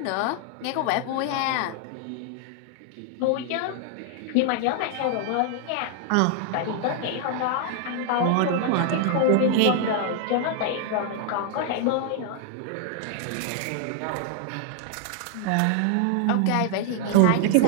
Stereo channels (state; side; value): different; both; correlation 0.00